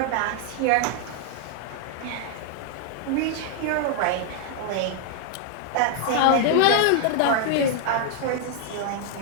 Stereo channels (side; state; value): both; different; correlation 0.00